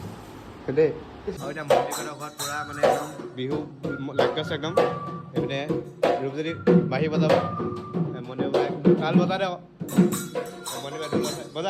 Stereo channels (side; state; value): both; identical; correlation 1.00